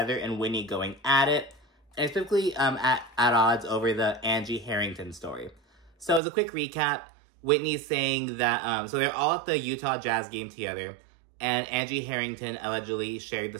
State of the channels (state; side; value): drops out; left; at 6.2 s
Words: and Whitney going at it, and specifically at odds over the Angie Harrington story. So as a quick recap, Whitney's saying that, so they're all at the Utah Jazz game together, and Angie Harrington allegedly shared